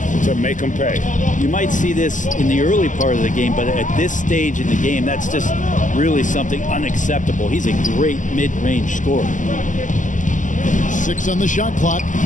to make them pay. You might see this in the early part of the game, but at this stage in the game, that's just really something unacceptable. He's a great mid-range scorer. 6 on the shot clock.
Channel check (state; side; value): late; right; 0.37 ms